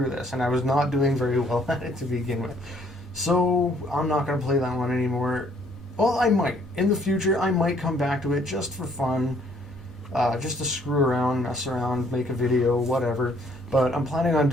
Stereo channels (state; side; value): normal; both; correlation 0.63